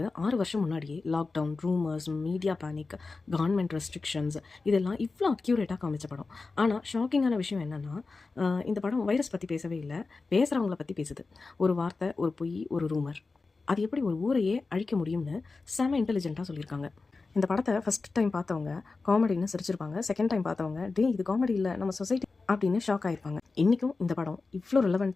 6 வருஷம் முன்னாடியே lockdown, rumours, media panic, government restrictions இதெல்லாம் இவ்வளோ அக்யூரேட்டாக காமிச்ச படம். ஆனால் ஷாக்கிங்கான விஷயம் என்னென்னா, இந்த படம் வைரஸ் பற்றி பேசவே இல்லை, பேசுகிறவங்கள பற்றி பேசுது. ஒரு வார்த்தை, ஒரு பொய், ஒரு ரூமர், அது எப்படி ஒரு ஊரையே அழிக்க முடியும்னு செம இன்டெலிஜென்ட்டாக சொல்லியிருக்காங்க. இந்த படத்தை ஃபஸ்ட் டைம் பார்த்தவங்க காமெடின்னு சிரிச்சிருப்பாங்க. செகண்ட் டைம் பார்த்தவங்க இது காமெடி இல்லை, நம்ம சொசைட்டி அப்படின்னு ஷாக் ஆகிருப்பாங்க. இன்றைக்கும் இந்த படம் இவ்வளோ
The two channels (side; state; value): right; quieter; 4.0 dB